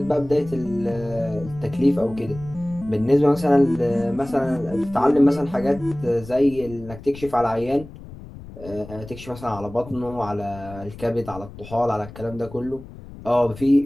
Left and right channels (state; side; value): noise; left; rumble, 16 dB below the sound